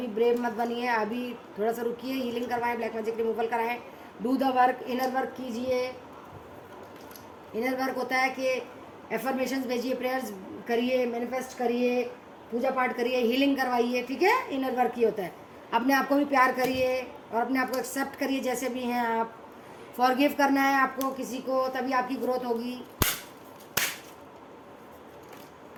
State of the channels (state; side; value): identical; both; correlation 1.00